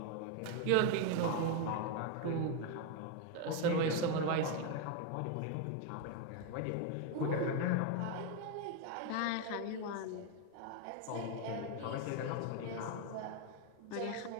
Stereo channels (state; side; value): different; both; correlation 0.02